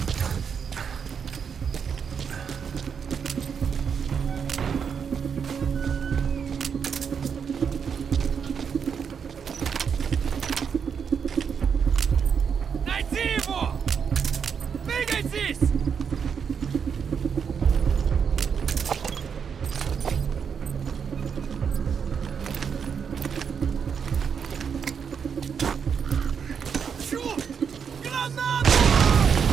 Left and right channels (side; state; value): left; quieter; 6.8 dB